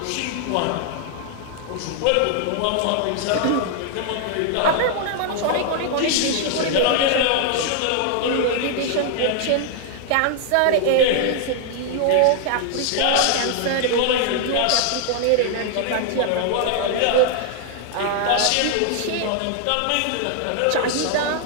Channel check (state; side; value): different; both; correlation 0.00